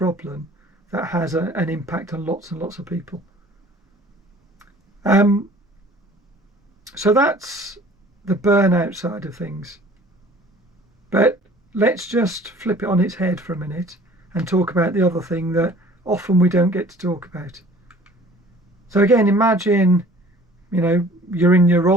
that has an impact on lots and lots of people. So that's the burnout side of things. But let's just flip it on its head for a minute and talk about the other thing that often we don't get to talk about. So again, imagine, you're in your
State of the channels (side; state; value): both; normal; correlation 0.50